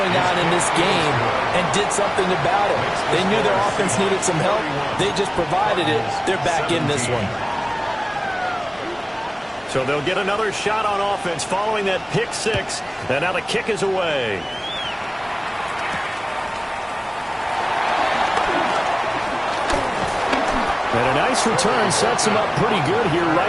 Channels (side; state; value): both; identical; correlation 1.00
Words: on in this game and did something about it. They knew their offense needed some help. They just provided it. They're back in this one. So they'll get another shot on offense following that pick 6. And now the kick is away. And a nice return sets them up pretty good here